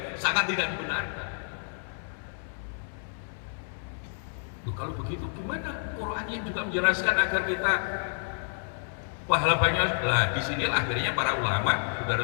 sangat tidak dibenarkan. Loh, kalau begitu gimana Qurannya juga menjelaskan agar kita pahala banyak? Nah, disinilah akhirnya para ulama, saudara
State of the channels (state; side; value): silent; right; 58 dB below the other